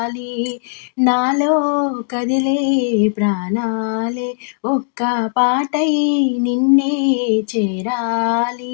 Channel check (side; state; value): right; silent; digital silence